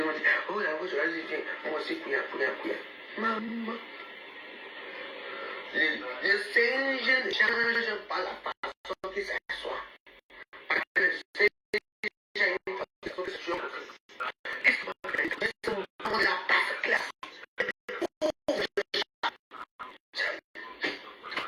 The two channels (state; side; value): identical; both; correlation 1.00